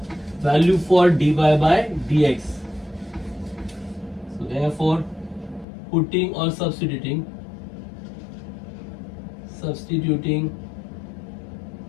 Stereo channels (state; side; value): drops out; right; at 5.7 s